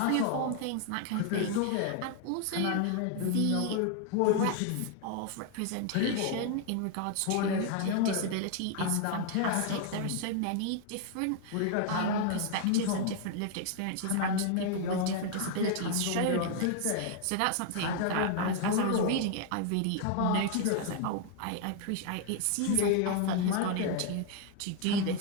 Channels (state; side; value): different; both; correlation 0.00